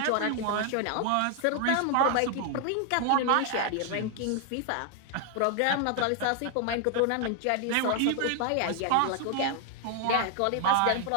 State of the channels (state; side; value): different; both; correlation 0.00